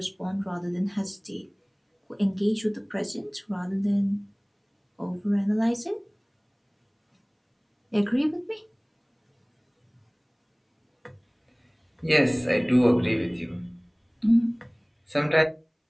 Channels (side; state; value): both; identical; correlation 1.00